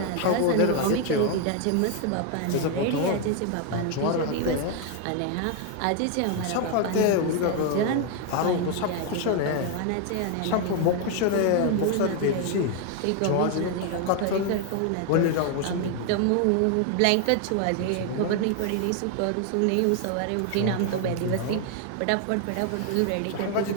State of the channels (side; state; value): both; different; correlation 0.01